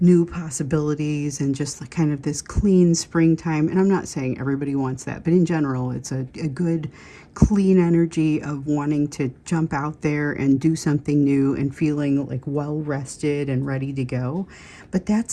new possibilities, and just like kind of this clean springtime. And I'm not saying everybody wants that, but in general, it's a good, clean energy of wanting to jump out there and do something new and feeling like well rested and ready to go. But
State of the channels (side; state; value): both; identical; correlation 1.00